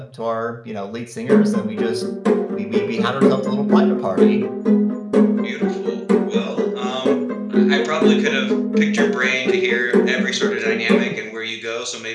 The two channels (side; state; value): both; identical; correlation 1.00